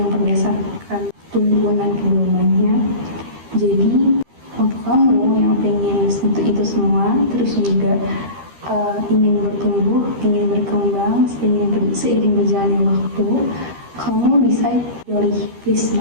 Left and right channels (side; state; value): left; late; 13 ms